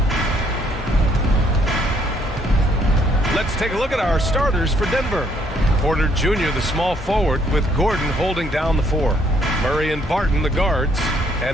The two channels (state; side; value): normal; both; correlation 0.67